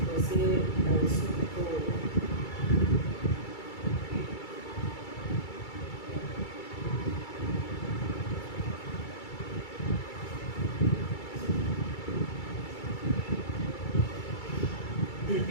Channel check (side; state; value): right; late; 2.3 ms